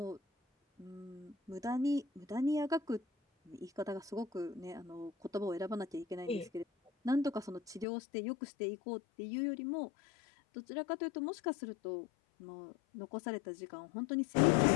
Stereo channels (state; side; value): drops out; right; at 7.9 s